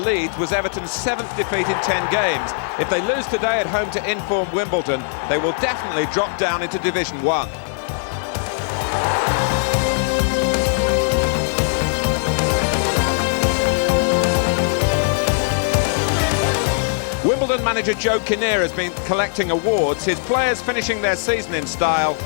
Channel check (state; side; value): silent; right; digital silence